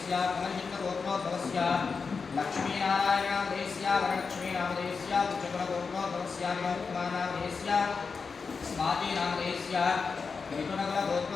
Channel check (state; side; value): quieter; right; 5.1 dB